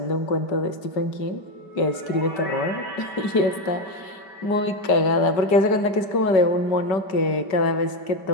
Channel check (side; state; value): right; late; 5.0 ms